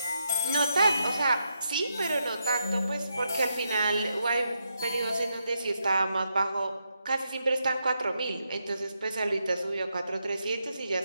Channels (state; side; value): inverted; both; correlation -0.82